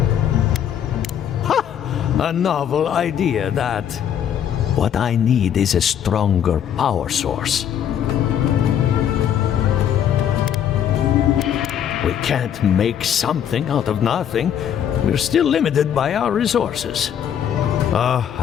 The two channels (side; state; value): right; quieter; 9.4 dB